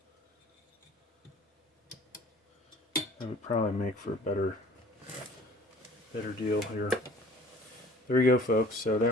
That would probably make for a better deal here. There we go, folks. So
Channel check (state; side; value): normal; both; correlation 0.50